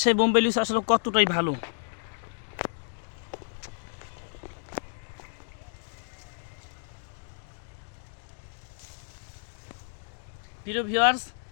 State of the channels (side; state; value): right; silent; digital silence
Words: বোম্বাই লিচু আসলে কতটাই ভালো। প্রিয় ভিউয়ার্স,